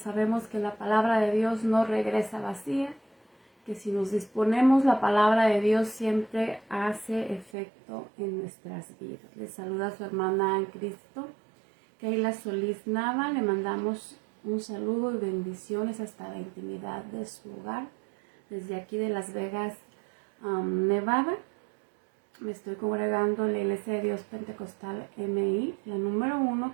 que la palabra de Dios no regresa vacía, que si nos disponemos, la palabra de Dios siempre hace efecto en nuestras vidas. Les saluda su hermana en Cristo, Keila Solís Nava. Le mandamos un saludo y bendiciones hasta la intimidad de su hogar, desde aquí de Las Vegas, Nevada. Me estoy congregando en la Iglesia de Dios Pentecostal MI, la número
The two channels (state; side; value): drops out; left; at 7.5 s